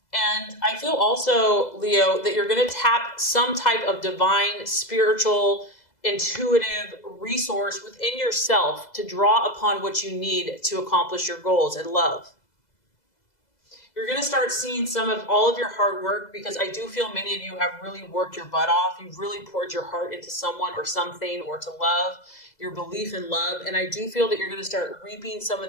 And I feel also, Leo, that you're going to tap some type of divine, spiritual, intuitive resource within yourself to draw upon what you need to accomplish your goals in love. You're going to start seeing some of all of your hard work, because I do feel many of you have really worked your butt off. You've really poured your heart into someone or something, or to love, your belief in love. And I do feel that you're going to start reaping some of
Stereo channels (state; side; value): late; right; 2.0 ms